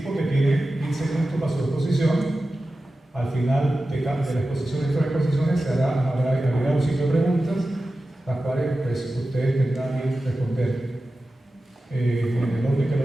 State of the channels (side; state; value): both; normal; correlation 0.94